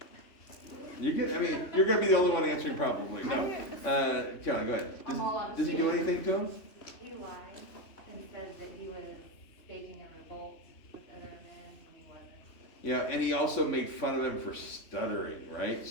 You're gonna be the only one answering probably. No. Caroline, go ahead. I'm all out of Does he do steam. anything to him? He lied and said that he was staging a revolt with other men when he wasn't. Yeah, and he also made fun of him for stuttering, right?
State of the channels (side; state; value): right; late; 3.6 ms